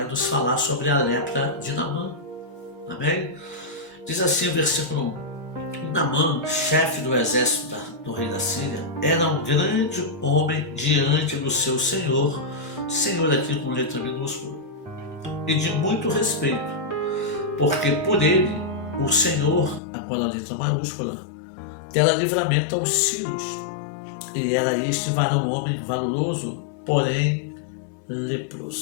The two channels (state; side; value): drops out; right; at 19.8 s